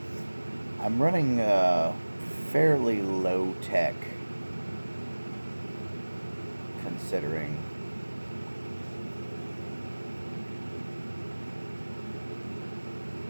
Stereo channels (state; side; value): inverted; both; correlation -1.00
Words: I'm running fairly low tech considering.